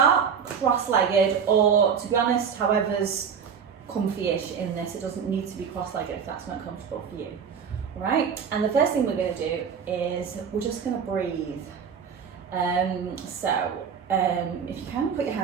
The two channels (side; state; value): left; quieter; 6.9 dB